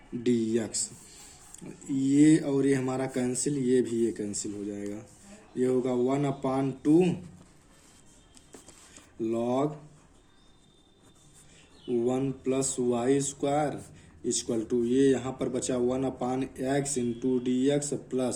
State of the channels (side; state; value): both; identical; correlation 1.00